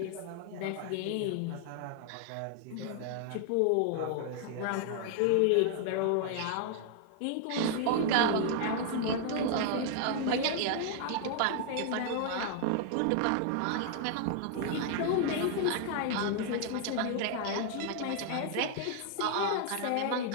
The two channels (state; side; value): different; both; correlation 0.00